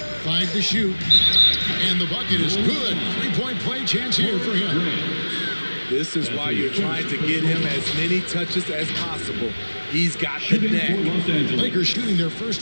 Five to shoot. And the bucket is good. Three-point play chance here for him. This is why you're trying to get him as many touches as possible. He's got the neck. Lakers shooting their first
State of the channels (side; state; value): both; inverted; correlation -1.00